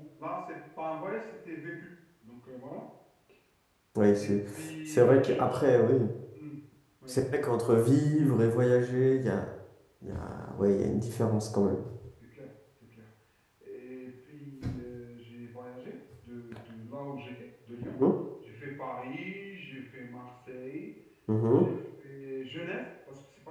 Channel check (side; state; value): both; identical; correlation 1.00